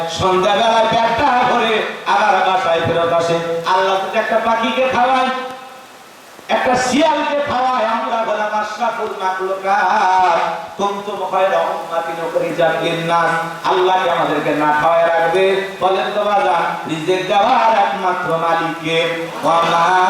সন্ধ্যাবেলায় পেটটা ভরে আবার বাসায় ফেরত আসে। আল্লাহ যদি একটা পাখিকে খাওয়ায়, একটা শিয়ালকে খাওয়ায়, আমরা বললাম আশরাফুল মাখলুকাত কুনতুম খায়রা উম্মাতিন উখরিজাত লিন-নাস। আল্লাহ কি আমাদেরকে না খাওয়ায় রাখবে? বলেন তো বাজান, রিজিক দেওয়ার একমাত্র মালিক কে? ওয়া মা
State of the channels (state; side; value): identical; both; correlation 1.00